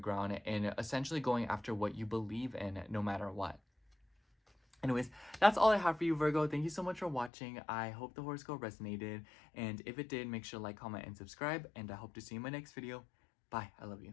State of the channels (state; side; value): drops out; right; at 7.3 s